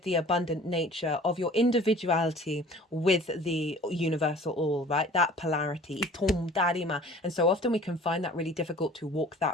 the abundant nature of your individuality with the universal all, right? That polarity. And so often we can find that really difficult to walk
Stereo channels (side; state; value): both; normal; correlation 0.47